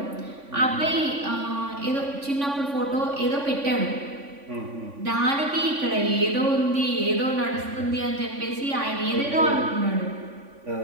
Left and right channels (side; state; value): left; late; 3.5 ms